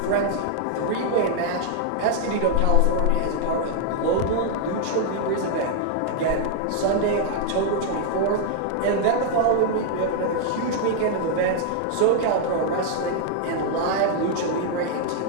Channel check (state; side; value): different; both; correlation -0.01